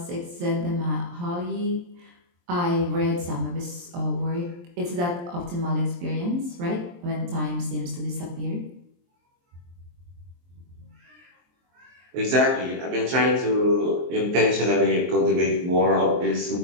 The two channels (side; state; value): left; late; 23 ms